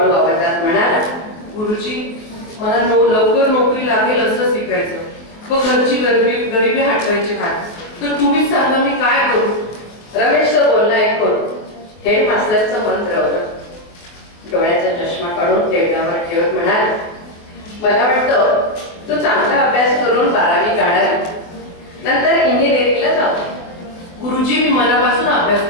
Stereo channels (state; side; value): late; right; 23 ms